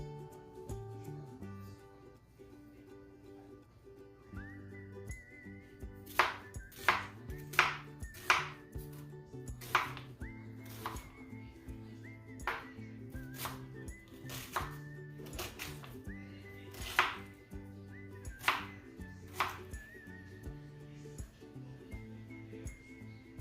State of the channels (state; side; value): identical; both; correlation 1.00